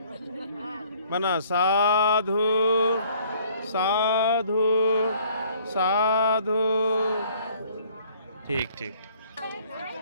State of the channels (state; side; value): inverted; both; correlation -0.58